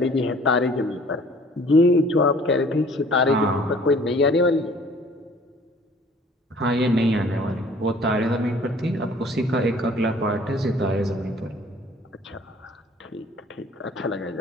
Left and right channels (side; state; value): both; normal; correlation 0.53